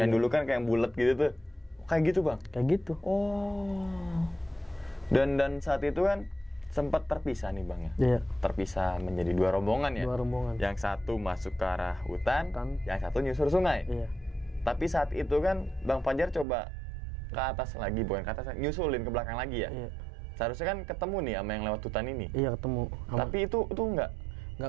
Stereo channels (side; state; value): left; drops out; at 16.4 s